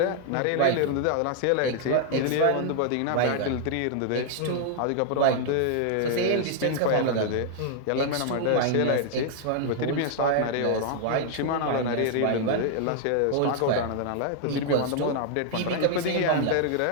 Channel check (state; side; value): different; both; correlation 0.00